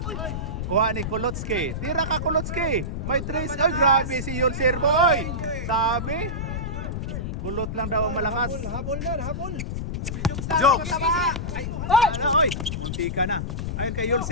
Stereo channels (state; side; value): noise; left; rumble, 4 dB below the sound